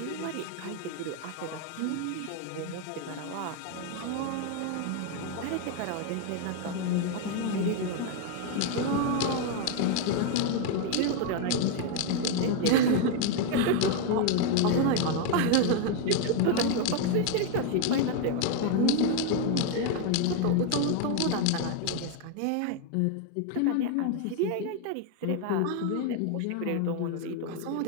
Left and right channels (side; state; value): both; different; correlation 0.01